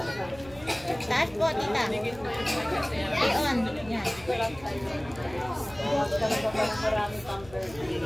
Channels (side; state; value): right; noise; hum, 19 dB below the sound